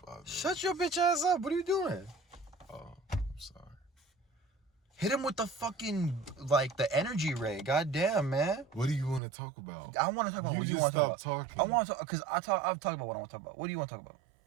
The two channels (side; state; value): left; drops out; at 9.2 s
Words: minutes. Shut your bitch ass up. What are you doing? Oh, I'm sorry. Hit him with the fucking, like, the energy ray. God damn, man. What do you want to talk about? I want to talk about what you want to talk about. Talking. I want to talk, because I've talked about what I want to talk about. What do you want to talk about?